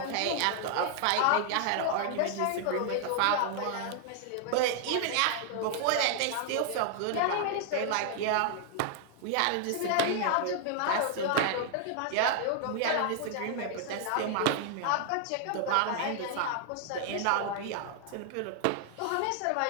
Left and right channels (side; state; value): both; different; correlation 0.00